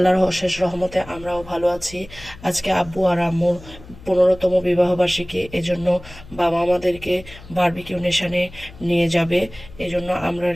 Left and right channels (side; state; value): left; noise; hum, 19 dB below the sound